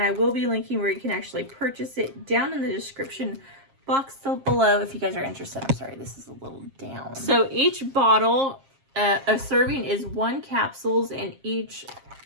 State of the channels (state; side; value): late; left; 7.5 ms